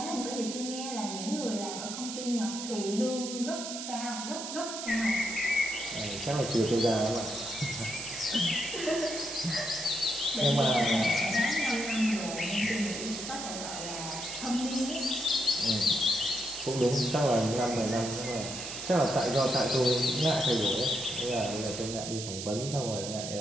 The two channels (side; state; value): right; noise; hiss, 7 dB below the sound